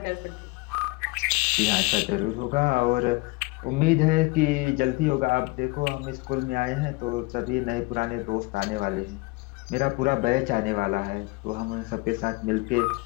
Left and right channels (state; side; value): quieter; right; 24.4 dB